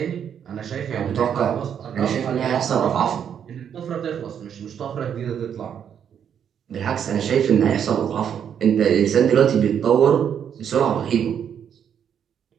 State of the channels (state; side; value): quieter; left; 8.4 dB